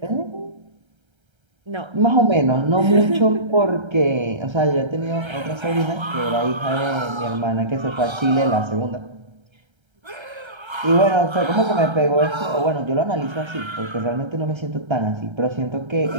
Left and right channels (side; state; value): left; late; 1.3 ms